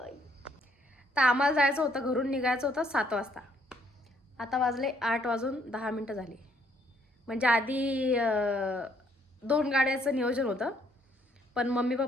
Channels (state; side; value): normal; both; correlation 0.67